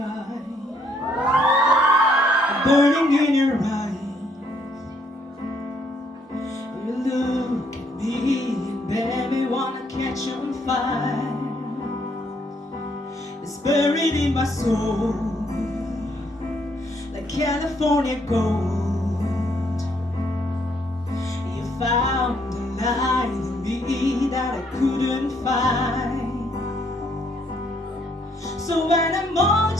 burning in your eyes. You look at me and baby wanna catch on fire. It's buried in my soul like California gold. You found a light in me that I couldn't find. So when I'm on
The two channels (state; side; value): normal; both; correlation 0.70